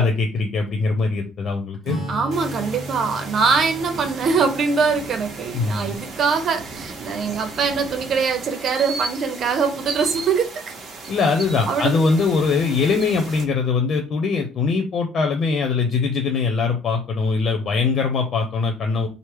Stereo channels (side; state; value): both; normal; correlation 0.58